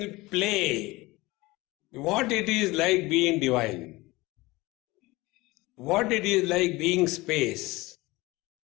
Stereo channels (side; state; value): right; quieter; 21.3 dB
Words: play what it is like being divine, what it is like being space,